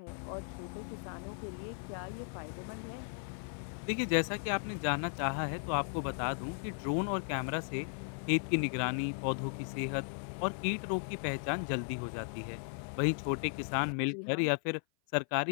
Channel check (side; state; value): right; silent; 54 dB below the other